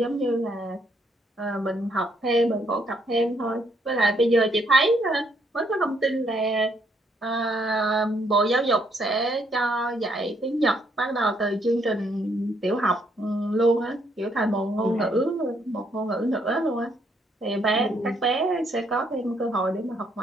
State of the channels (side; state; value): both; normal; correlation 0.72